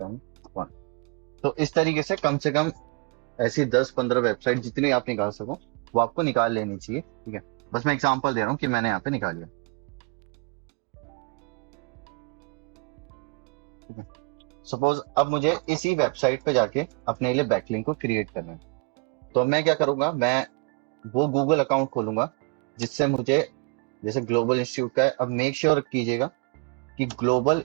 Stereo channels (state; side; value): quieter; left; 31.8 dB